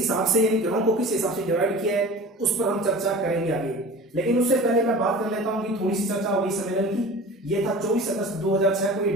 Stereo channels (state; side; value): normal; both; correlation 0.38